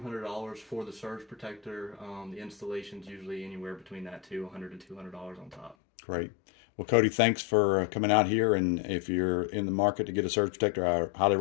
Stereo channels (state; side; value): drops out; right; at 5.8 s